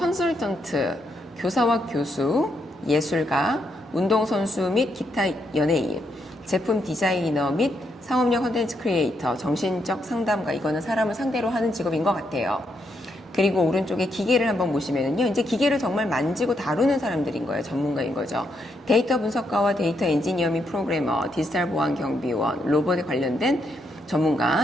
교사와 교수, 예술가, 운동선수 및 기타 연예인, 제품 디자이너 및 상업용 컨텐츠 크리에이터, 정신적 상담가. 이거는 사람을 상대로 하는 직업인 것 같아요. 그리고 오른쪽에 기계를 한번 보시면은요, 이제 기계를 정말 만지고 다루는 사람들인 거예요. 전문가인 거죠. 데이터 분석가와 데이터 엔지니어 및 프로그래머, 디지털 보안 경비원, 로봇에 관련된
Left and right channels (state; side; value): normal; both; correlation 0.78